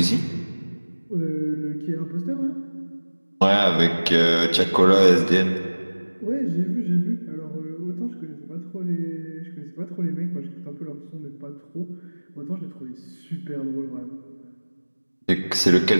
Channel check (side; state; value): both; inverted; correlation -1.00